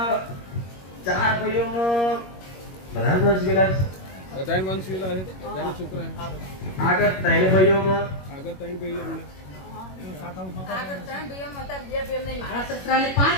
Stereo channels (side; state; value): right; late; 21 ms